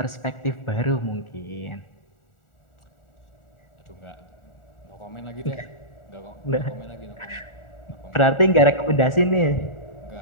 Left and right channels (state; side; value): late; right; 1.4 ms